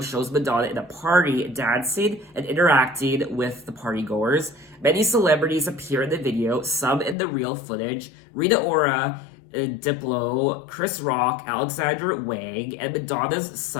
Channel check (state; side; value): drops out; right; at 7.2 s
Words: shows Madonna at a party dancing and interacting with the partygoers. Many celebrities appear in the video, some in the real footage. Rita Ora, Diplo, Chris Rock, Alexander Wang, and Madonna's